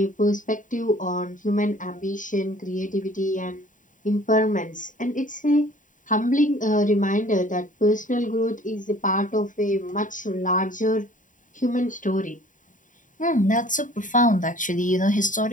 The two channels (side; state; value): right; late; 0.38 ms